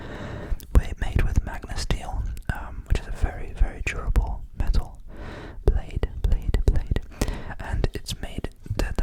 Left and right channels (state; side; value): identical; both; correlation 1.00